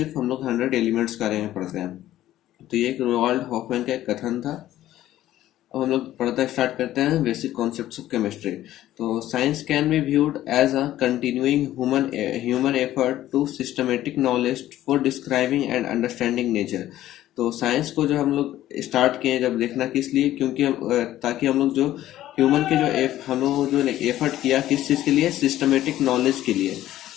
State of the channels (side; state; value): right; quieter; 13.7 dB